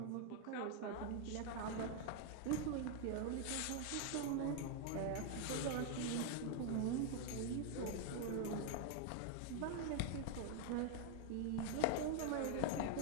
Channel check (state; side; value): different; both; correlation 0.00